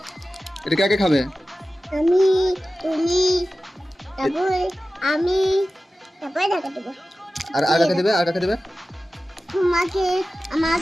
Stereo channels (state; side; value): normal; both; correlation 0.95